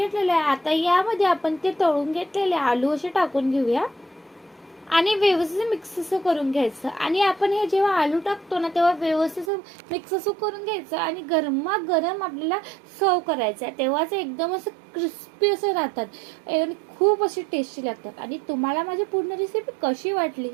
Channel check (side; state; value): left; drops out; at 9.5 s